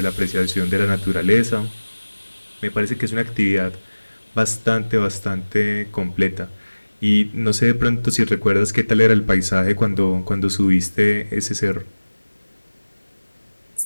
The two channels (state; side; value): inverted; both; correlation -1.00